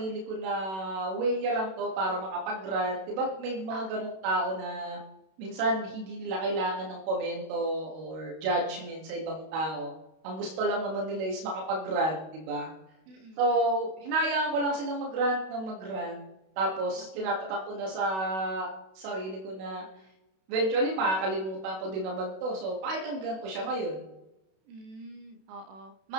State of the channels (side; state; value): left; late; 32 ms